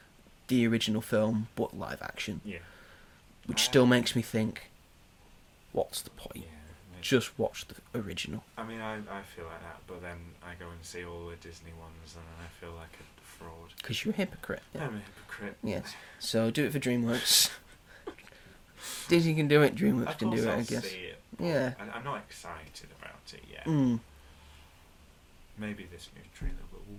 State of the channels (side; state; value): both; identical; correlation 1.00